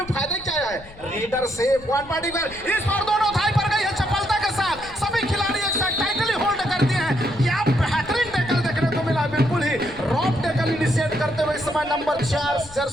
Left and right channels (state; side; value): noise; left; rumble, 19 dB below the sound